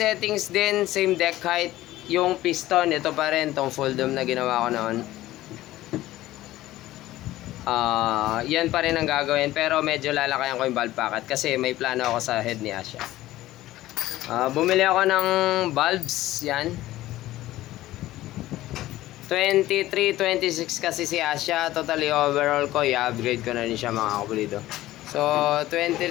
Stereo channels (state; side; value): quieter; right; 15.7 dB